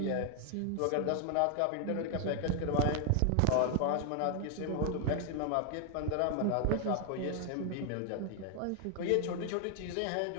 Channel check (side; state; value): both; different; correlation 0.00